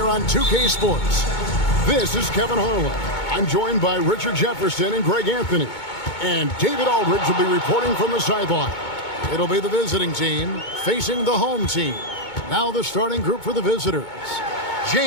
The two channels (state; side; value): late; right; 2.2 ms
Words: on 2K Sports. This is Kevin Harlan. I'm joined by Richard Jefferson and Greg Anthony. And David Aldridge will be reporting from the sideline. It'll be the visiting team facing the home team. Now the starting group for the visitors.